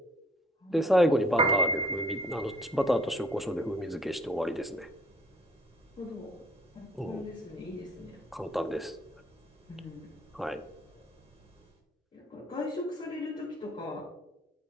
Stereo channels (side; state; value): both; normal; correlation 0.57